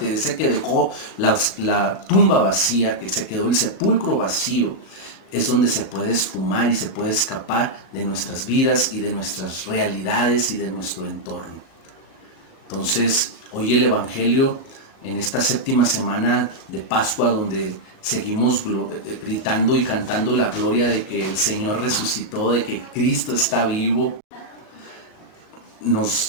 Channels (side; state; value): right; late; 37 ms